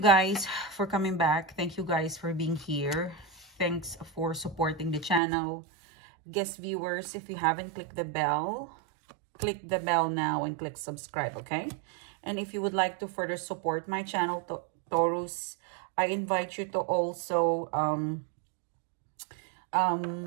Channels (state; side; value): drops out; left; at 5.2 s